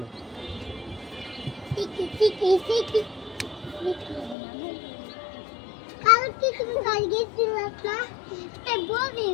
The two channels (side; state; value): right; drops out; at 4.4 s